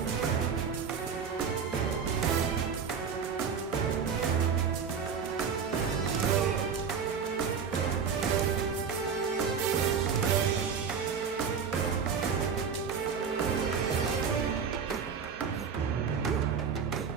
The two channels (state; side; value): quieter; left; 6.4 dB